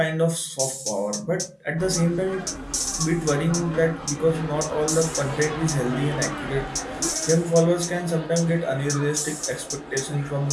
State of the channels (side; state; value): both; identical; correlation 1.00